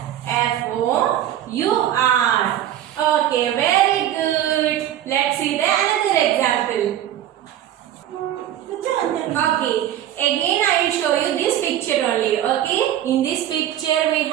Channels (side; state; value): left; quieter; 11.7 dB